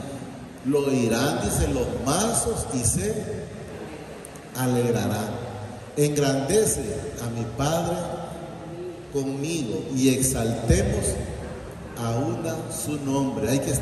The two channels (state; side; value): identical; both; correlation 1.00